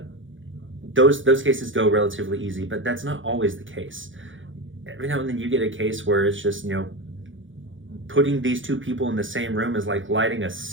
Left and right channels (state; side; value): late; left; 0.56 ms